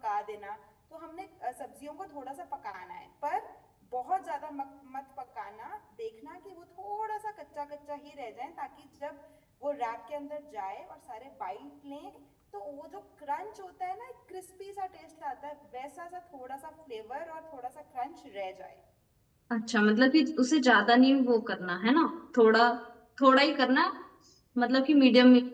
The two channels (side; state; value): both; identical; correlation 1.00